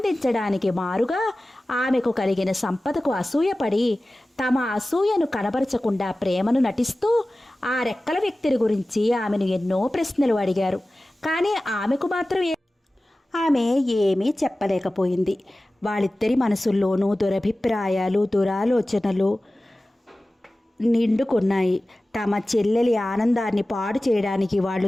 మారుగా ఆమెకు కలిగిన సంపదకు అసూయపడి తమ అసూయను కనబరచకుండా ప్రేమను నటిస్తూ ఆ రెక్కల వ్యక్తిని గురించి ఆమెను ఎన్నో ప్రశ్నలు అడిగారు. కానీ ఆమెకు మాత్రం ఆమె ఏమీ చెప్పలేకపోయింది. వాళ్ళిద్దరి మనసుల్లోనూ దురభిప్రాయాలు, దురాలోచనలు నిండుకున్నాయి. తమ చెల్లెలి ఆనందాన్ని పాడు చేయడానికి వాళ్ళు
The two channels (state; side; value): normal; both; correlation 0.96